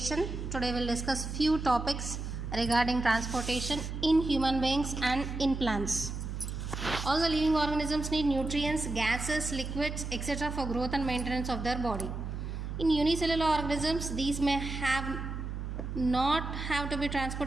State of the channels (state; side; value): noise; right; hum, 5 dB below the sound